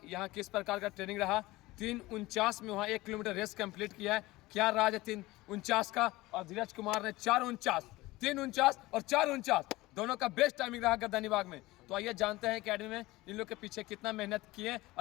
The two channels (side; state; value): right; quieter; 19.5 dB